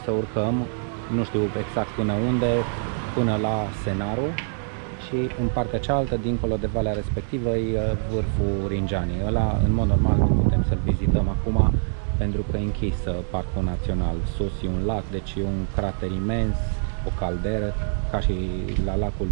să urcăm, nu știu exact până unde, până la Scenarul, și în partea cealaltă, dincolo de valea respectivă, e vârful Ringianii. Ăla, în mod normal, nu putem să-l vizităm acum, pentru că e închis Parcul Național. Sus e un lac, deci e un crater imens, o calderă, ca și la lacul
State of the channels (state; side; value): silent; left; digital silence